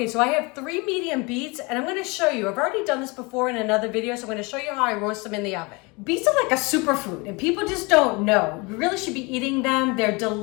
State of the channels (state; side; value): quieter; right; 27.3 dB